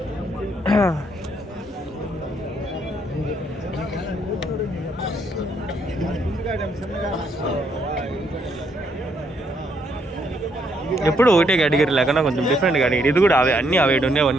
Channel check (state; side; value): normal; both; correlation 0.72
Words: ఎప్పుడు ఒకటే కేటగిరీ లేకుండా కొంచెం డిఫరెంట్ కేటగిరీ. ఇది కూడా అవే, అన్నీ అవే